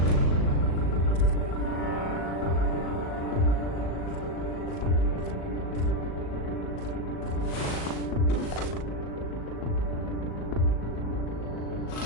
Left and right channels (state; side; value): late; right; 38 ms